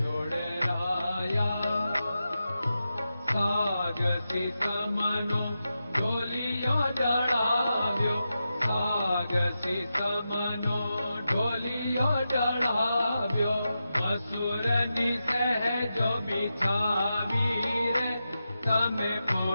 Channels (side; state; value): both; inverted; correlation -0.90